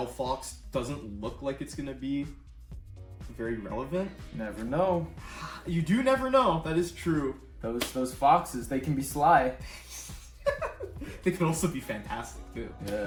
doesn't look like it's going to be very relevant. Never know. You do never know. That is true. Those foxes, they can be sly. They can also be fantastic too.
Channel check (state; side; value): identical; both; correlation 1.00